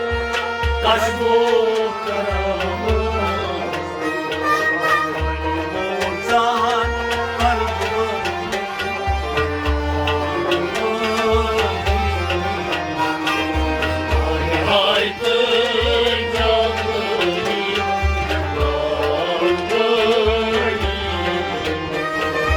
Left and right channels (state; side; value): identical; both; correlation 1.00